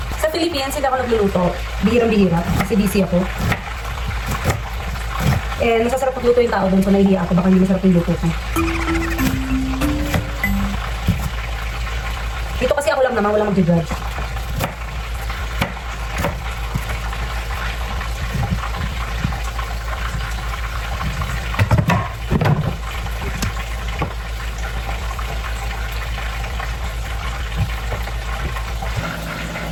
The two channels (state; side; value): identical; both; correlation 1.00